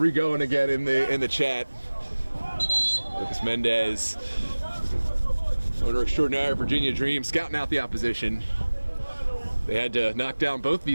again in the chat. Lucas Mendez, owner extraordinaire, Virginia Dream, scouting out the opposition. They had to knock down both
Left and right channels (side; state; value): both; inverted; correlation -1.00